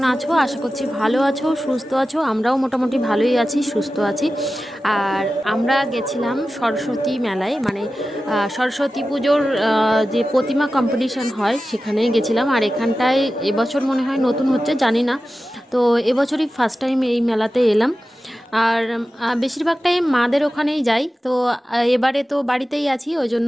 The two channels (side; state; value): both; normal; correlation 0.94